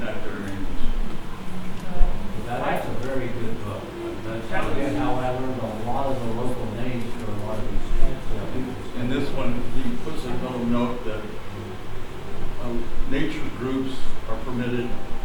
nature groups are permitted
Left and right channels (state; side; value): identical; both; correlation 1.00